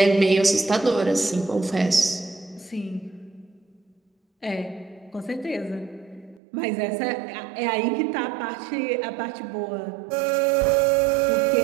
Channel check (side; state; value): left; drops out; at 6.4 s